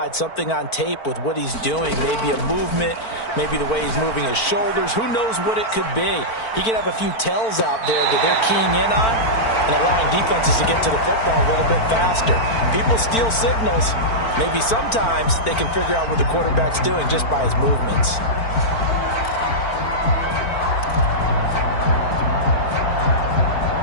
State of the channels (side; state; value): right; late; 4.5 ms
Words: something on tape with what he's doing, maybe a movement, maybe the way he's moving his shoulders. Who knows what it could be? He could have a few tells out there that they're keying in on and allowing defenses to get to the football a little bit faster. People steal signals. Maybe sometimes they can figure out what the quarterback's doing just by his movements.